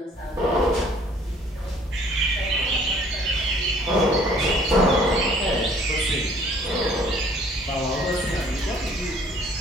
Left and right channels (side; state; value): both; normal; correlation 0.57